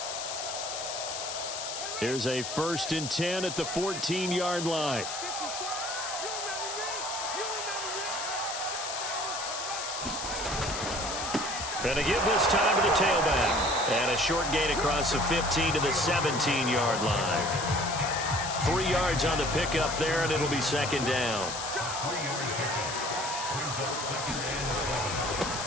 Here's a 1st and 10 at the 14-yard line. And to give this time to the tailback. And a short gain across the 15 to the 17-yard line. 3 yards on the pickup there, and it'll be 2nd down.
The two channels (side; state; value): left; noise; hiss, 5 dB below the sound